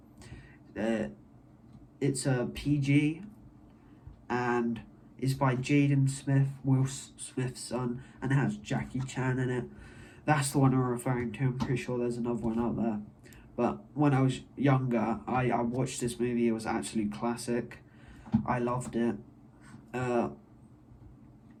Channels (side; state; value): both; identical; correlation 1.00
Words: It's a PG, and it's by Jaden Smith, Will Smith's son, and it has Jackie Chan in it. That's the one I'm referring to. I'm pretty sure there's another one out there. But when I was younger, I watched this movie. It was absolute classic. I loved it.